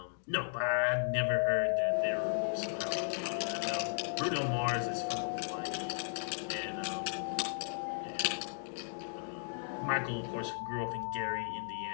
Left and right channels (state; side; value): silent; right; digital silence